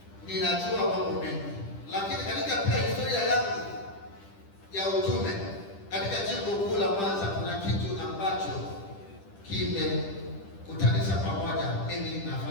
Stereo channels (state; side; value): late; right; 10 ms